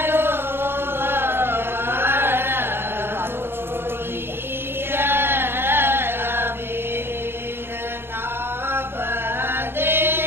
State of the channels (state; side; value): late; left; 0.11 ms